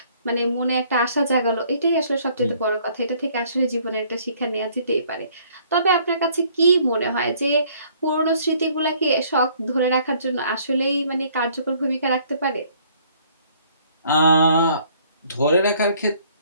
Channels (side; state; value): both; inverted; correlation -0.61